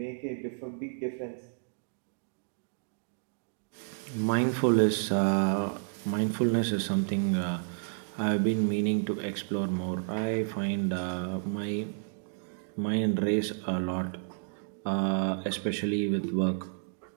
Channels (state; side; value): silent; left; digital silence